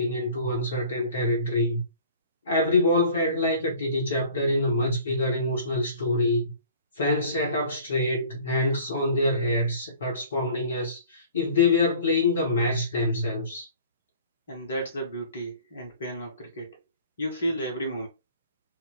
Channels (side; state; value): both; inverted; correlation -0.48